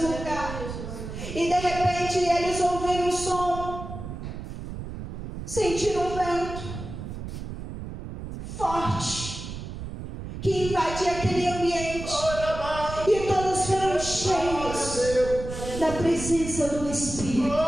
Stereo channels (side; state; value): right; noise; rumble, 8 dB below the sound